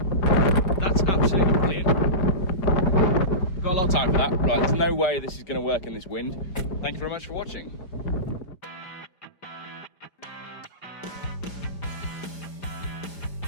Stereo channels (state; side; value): late; right; 5.0 ms